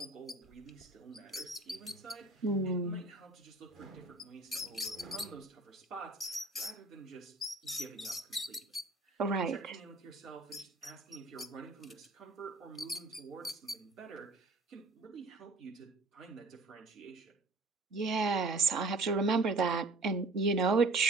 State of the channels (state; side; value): quieter; left; 3.3 dB